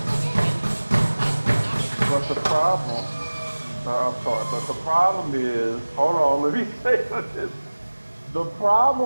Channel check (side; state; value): both; inverted; correlation -1.00